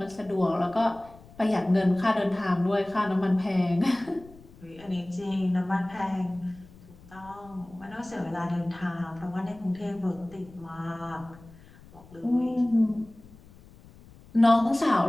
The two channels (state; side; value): noise; left; rumble, 22 dB below the sound